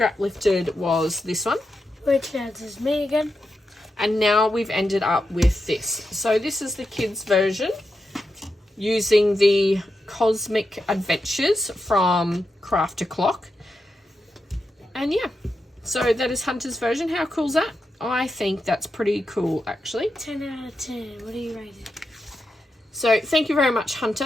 lifted was this one. Which is me again? And now we've ended up with this. So this is the kids' version using the Cosmic Adventures from Craft to Clock. And yeah, so that is Hunter's version. How cool is that? I think that's pretty cool, actually. 10 out of 10. What do you rate it? So thank you very much,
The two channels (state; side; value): normal; both; correlation 0.87